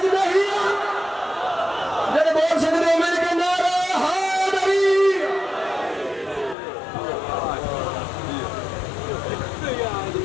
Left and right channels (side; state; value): right; drops out; at 6.6 s